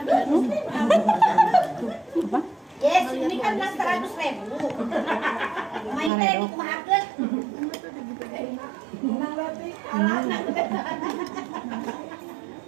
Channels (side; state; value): left; drops out; at 6.1 s